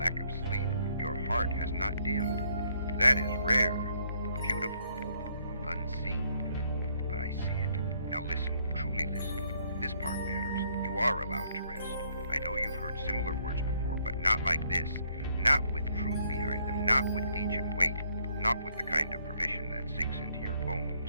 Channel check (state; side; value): inverted; both; correlation -0.68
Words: of sleep, your heart has not dimmed. That is rare, beautiful, unseen. But I see it. Now listen, truly listen. This part matters. You are allowed to rest. I know you've heard similar words before, but not like this. Not with truth behind them, not with ancient weight, not with the kind of permission that sinks into your